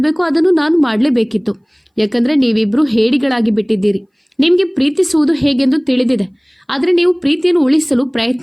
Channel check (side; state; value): both; identical; correlation 1.00